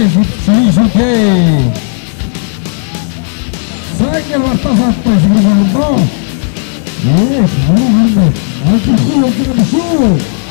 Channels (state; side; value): silent; right; digital silence